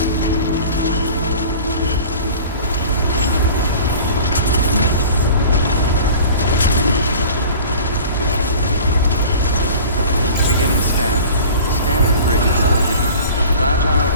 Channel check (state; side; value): inverted; both; correlation -0.41